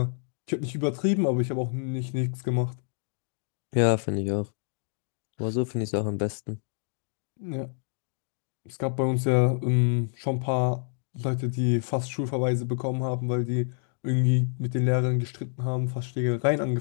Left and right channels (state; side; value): silent; right; 59 dB below the other